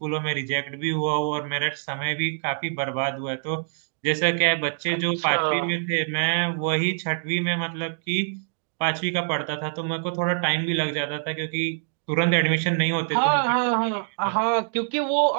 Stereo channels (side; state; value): left; silent; digital silence